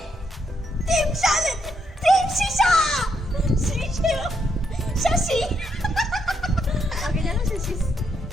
Team Shalin, Team Shisha, Shisha, Shashi. Okay, ഞാൻ ശശി.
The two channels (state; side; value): normal; both; correlation 0.78